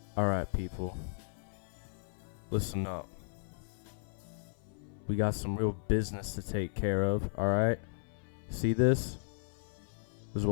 Alright, people. Listen up. We got some real business to take care of, alright? See this? This is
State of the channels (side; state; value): right; silent; 54 dB below the other